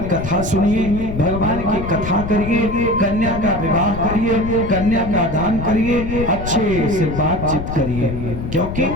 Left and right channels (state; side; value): noise; left; rumble, 6 dB below the sound